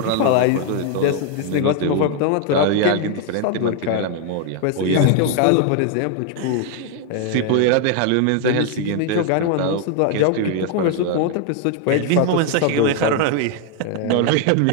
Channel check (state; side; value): different; both; correlation 0.01